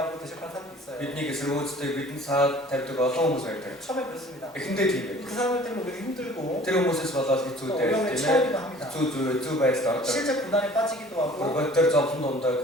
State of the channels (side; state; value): both; normal; correlation 0.49